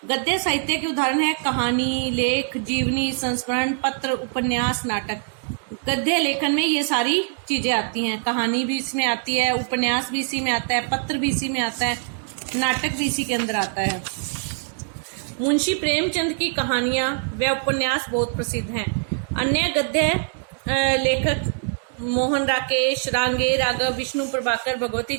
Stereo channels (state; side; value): silent; left; digital silence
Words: गद्य साहित्य के उदाहरण है कहानी, लेख, जीवनी, संस्मरण, पत्र, उपन्यास, नाटक। गद्य लेखन में ये सारी चीजें आती हैं। कहानी भी इसमें आती है, उपन्यास भी इसी में आता है, पत्र भी इसी में आता है, नाटक भी इसी के अंदर आता है। मुंशी प्रेमचंद की कहानियां व उपन्यास बहुत प्रसिद्ध हैं। अन्य गद्य लेखक मोहन राकेश, रांगे, राघव, विष्णु प्रभाकर, भगवती